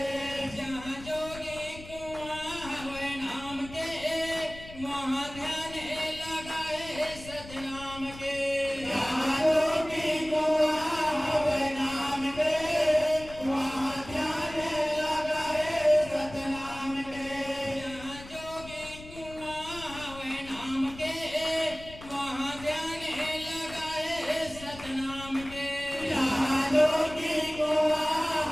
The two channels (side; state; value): left; noise; rumble, 16 dB below the sound